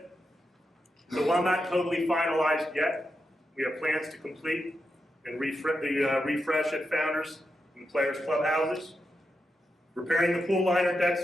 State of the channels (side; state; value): both; normal; correlation 0.87